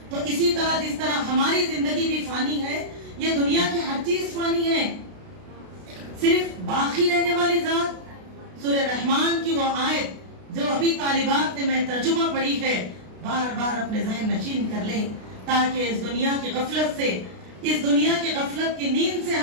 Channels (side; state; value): left; late; 32 ms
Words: तो इसी तरह जिस तरह हमारी जिंदगी भी फानी है, ये दुनिया की हर चीज फानी है, सिर्फ बाकी रहने वाली जात। सूरह रहमान की वो आयत जो अभी तालिबात ने मैं तर्जुमा पढ़ी है, बार बार अपने ज़हन नशीन कर लें ताकि इस दुनिया की गफलत से, इस दुनिया की गफलत की नींद से